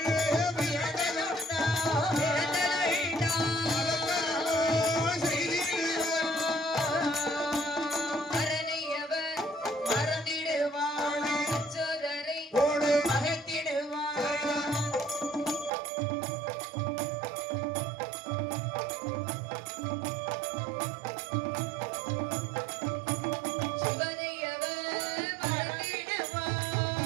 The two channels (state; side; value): drops out; left; at 15.7 s